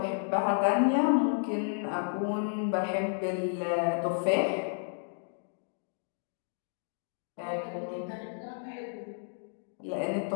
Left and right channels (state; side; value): silent; right; digital silence